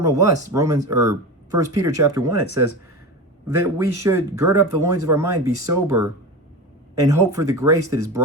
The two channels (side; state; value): both; normal; correlation 0.26